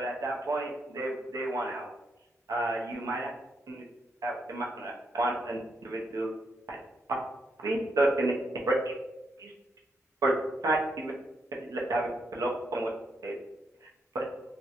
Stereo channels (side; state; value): both; normal; correlation 0.79